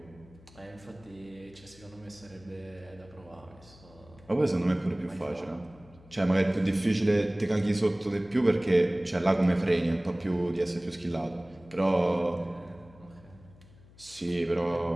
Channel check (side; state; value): left; noise; hum, 24 dB below the sound